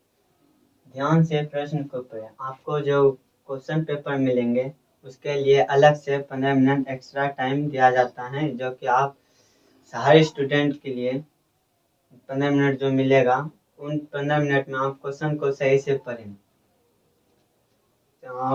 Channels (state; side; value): identical; both; correlation 1.00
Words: ध्यान से प्रश्न को पढ़ें। आपको जो क्वेश्चन पेपर मिलेंगे उसके लिए अलग से 15 मिनट एक्स्ट्रा टाइम दिया जाता है, जो कि आप हर स्टूडेंट के लिए 15 मिनट जो मिलेगा उन 15 मिनट में आप क्वेश्चन को सही से पढ़ें।